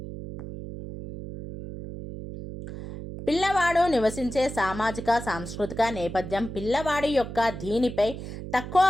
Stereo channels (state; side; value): noise; right; hum, 9 dB below the sound